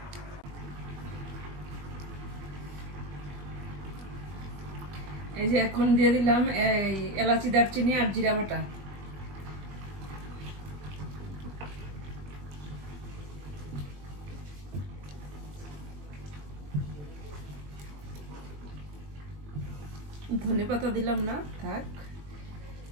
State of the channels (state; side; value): late; left; 21 ms